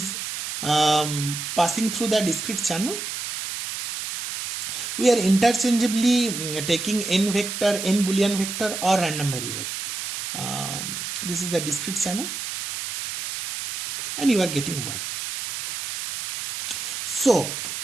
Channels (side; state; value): right; noise; hiss, 5 dB below the sound